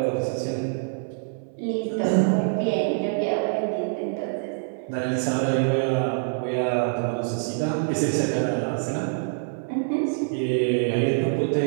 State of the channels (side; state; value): left; silent; 62 dB below the other